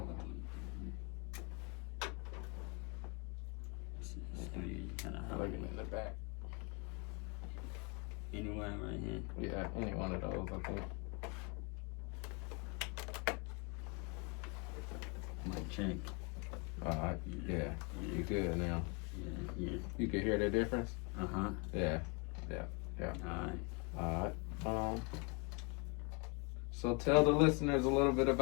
Looking in the back. Anywhere right here. Yeah, any one of those, I think. My check. Alright, yeah. You good now? Yeah. You can hear the difference? Yeah. Alright. So tell the listeners a little bit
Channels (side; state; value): right; quieter; 31.0 dB